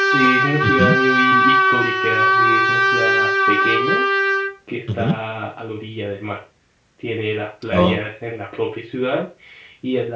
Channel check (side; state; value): both; identical; correlation 1.00